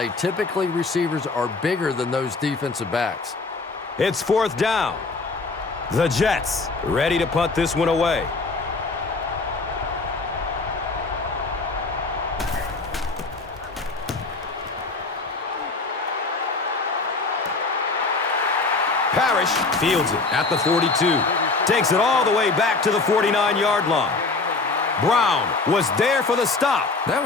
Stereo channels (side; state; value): right; quieter; 3.8 dB